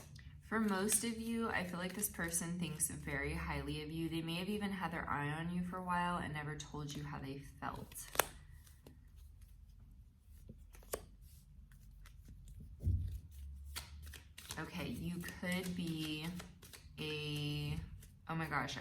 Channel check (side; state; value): both; identical; correlation 1.00